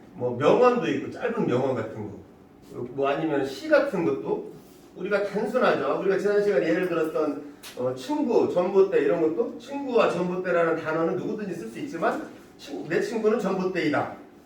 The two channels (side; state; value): both; identical; correlation 1.00